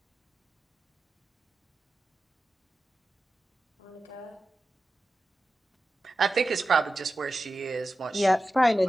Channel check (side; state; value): both; normal; correlation 0.93